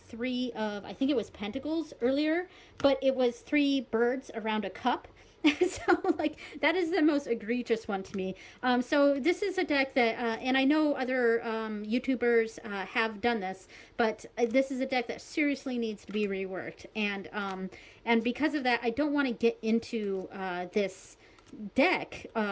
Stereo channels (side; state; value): both; identical; correlation 1.00